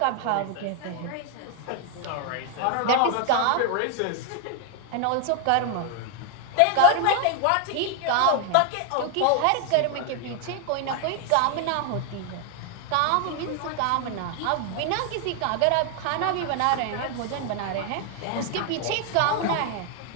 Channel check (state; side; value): different; both; correlation 0.01